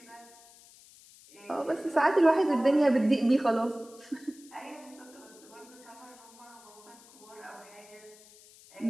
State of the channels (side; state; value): left; noise; hiss, 23 dB below the sound